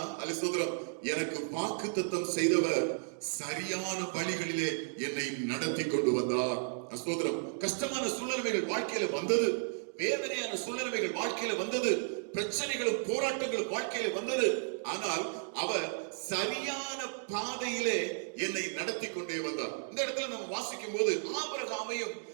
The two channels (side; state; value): left; silent; digital silence